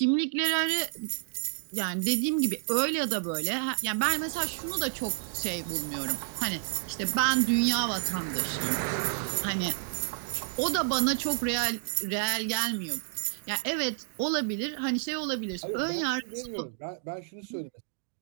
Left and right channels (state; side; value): silent; left; digital silence